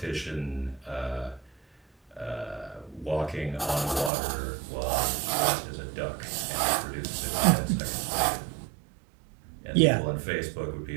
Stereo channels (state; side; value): drops out; left; at 4.1 s